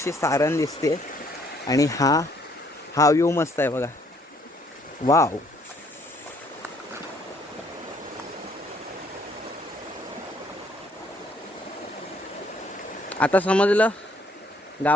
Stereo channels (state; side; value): normal; both; correlation 0.65